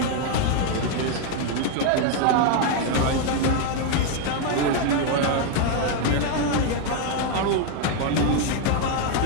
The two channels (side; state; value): both; different; correlation 0.01